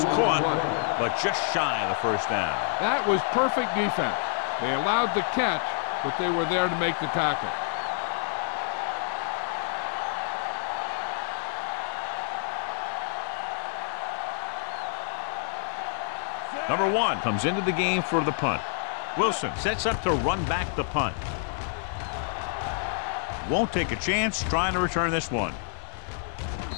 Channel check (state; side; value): silent; right; 59 dB below the other